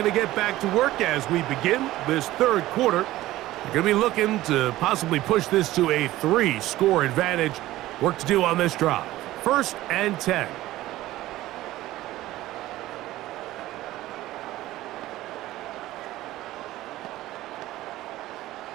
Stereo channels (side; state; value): left; quieter; 16.0 dB